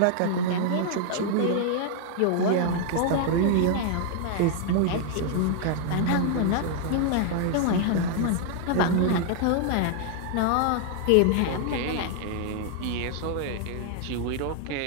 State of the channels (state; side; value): different; both; correlation -0.01